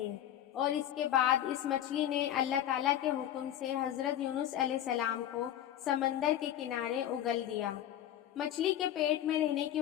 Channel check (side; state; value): right; quieter; 11.5 dB